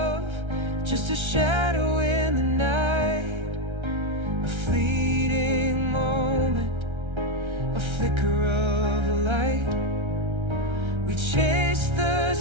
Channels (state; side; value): late; left; 1.3 ms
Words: just a shadow in the night, a fleeting moment, a flicker of a light. We chased the